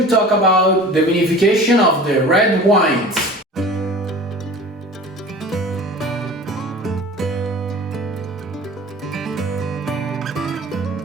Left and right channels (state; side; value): normal; both; correlation 0.41